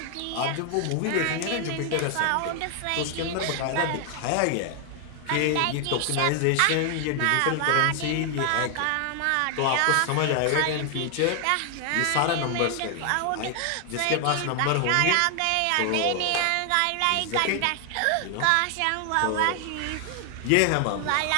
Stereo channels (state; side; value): different; both; correlation 0.00